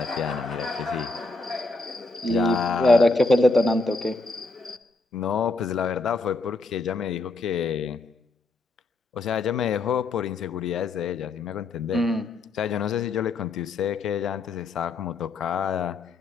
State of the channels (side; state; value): right; quieter; 3.4 dB